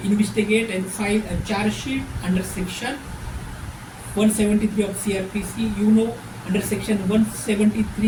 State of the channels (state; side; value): identical; both; correlation 1.00